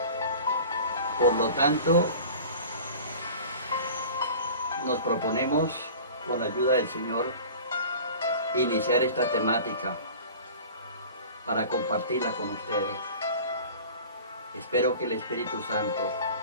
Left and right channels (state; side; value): inverted; both; correlation -0.40